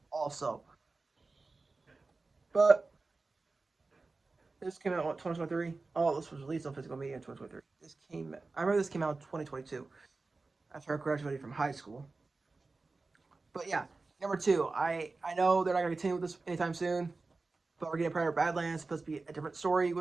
also. But this came out in 2023. Oh, this was released on physical media in 2023. I remember this came out in 2022 after I graduated from high school. But yeah, number 2. I know they're not going to continue with this anytime soon, but we're getting Predator Badlands. It's supposed to be a different story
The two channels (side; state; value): left; quieter; 3.7 dB